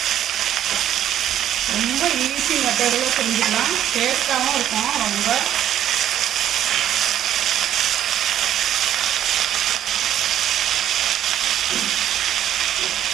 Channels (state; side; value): quieter; left; 11.0 dB